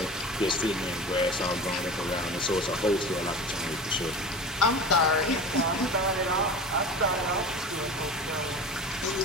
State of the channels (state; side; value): normal; both; correlation 0.33